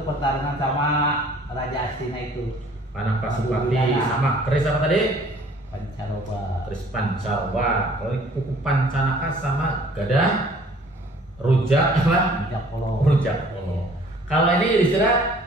pertarungan sama Raja Astina itu. Panah Pasupati Gada. sama keris apa tadi? Pancaroba. Keris pancaroba. Kalau ini kuku pancanaka sama gada rujak apa? Rujak polo. Rujak polo. Kalau ini Yudhistira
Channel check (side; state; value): both; normal; correlation 0.54